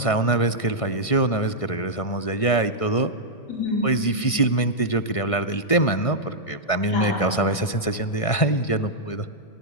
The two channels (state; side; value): late; right; 1.6 ms